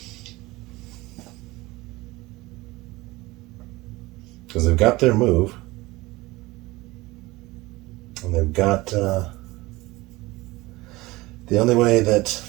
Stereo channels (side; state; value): left; quieter; 20.7 dB